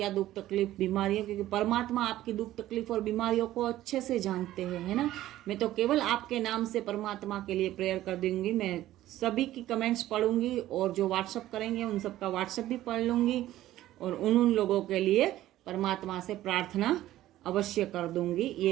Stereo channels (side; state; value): left; quieter; 14.4 dB